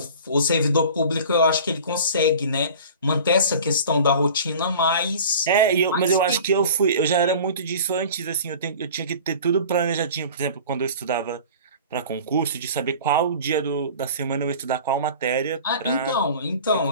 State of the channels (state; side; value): inverted; both; correlation -0.41